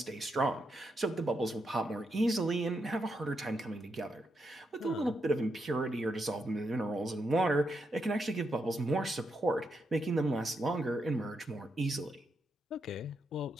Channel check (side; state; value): both; normal; correlation 0.82